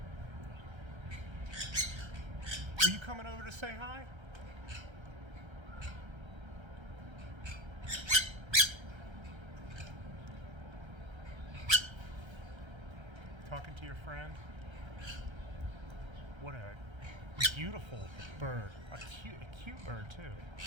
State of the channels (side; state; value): left; late; 1.3 ms